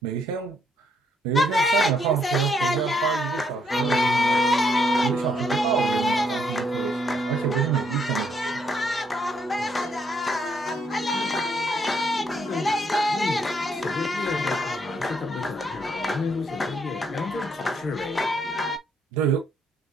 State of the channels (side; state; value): both; normal; correlation 0.72